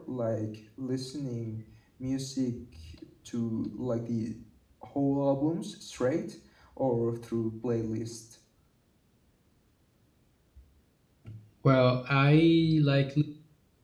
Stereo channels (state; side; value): identical; both; correlation 1.00